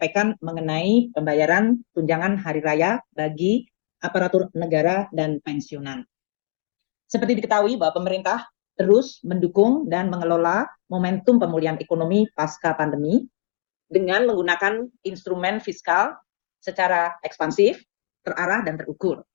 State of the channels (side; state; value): right; silent; 64 dB below the other